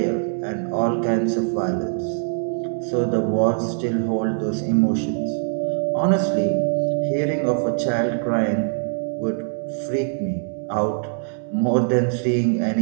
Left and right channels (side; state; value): left; silent; 61 dB below the other